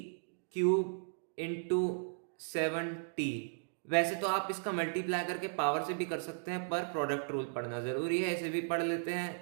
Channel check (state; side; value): silent; left; digital silence